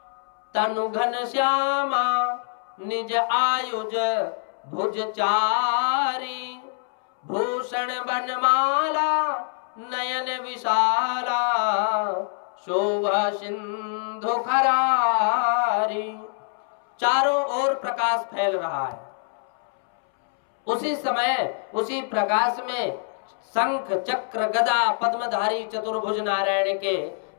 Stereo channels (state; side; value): silent; right; 62 dB below the other